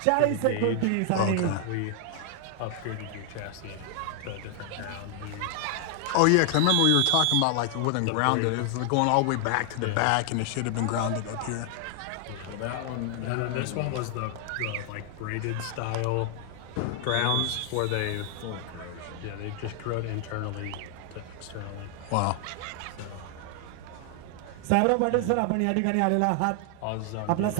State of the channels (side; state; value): both; different; correlation 0.00